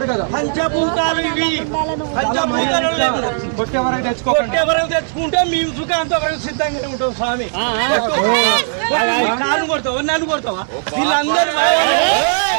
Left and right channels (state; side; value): silent; left; digital silence